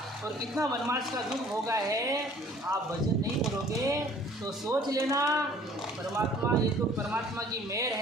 और कितना वनवास का दुख होगा है, आप भजन नहीं करोगे तो सोच लेना परमात्मा, ये तो परमात्मा की मेहर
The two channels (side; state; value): both; normal; correlation 0.54